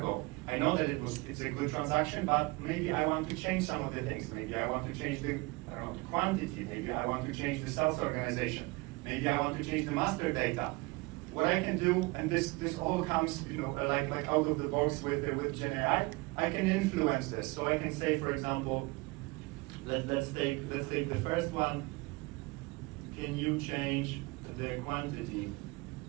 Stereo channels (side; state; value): left; quieter; 24.8 dB